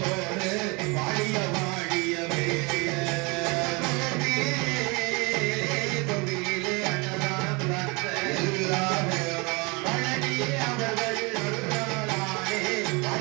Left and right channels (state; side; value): quieter; left; 28.0 dB